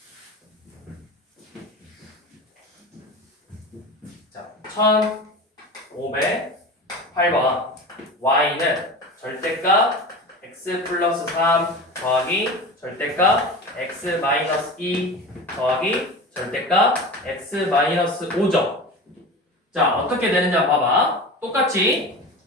자, 1508번 y는 절대값 x 플러스 3 더하기 절대값 x 마이너스 2 더하기 절대값 x 마이너스 5죠. 자, 어떻게 되는지 한번 봐봐. 똑같이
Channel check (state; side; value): normal; both; correlation 0.31